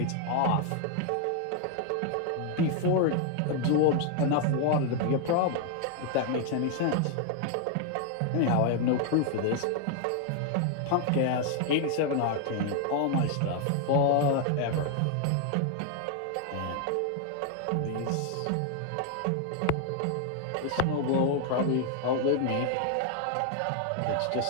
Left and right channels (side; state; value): both; different; correlation 0.00